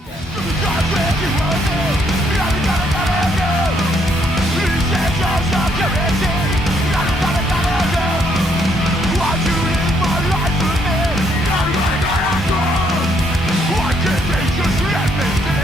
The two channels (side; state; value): both; normal; correlation 0.71